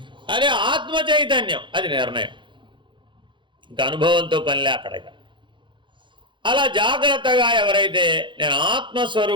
అదే ఆత్మ చైతన్యం అది నిర్ణయం, ఇంకా అనుభవంతో పనిలే అక్కడికి. అలా జాగ్రత్తగా ఎవరైతే నేను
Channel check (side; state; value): left; late; 0.23 ms